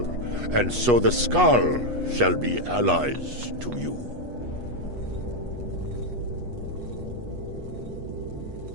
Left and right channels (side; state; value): left; late; 8.3 ms